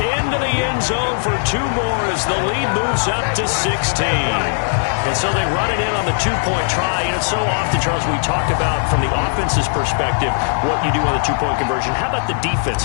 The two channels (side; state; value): right; silent; 55 dB below the other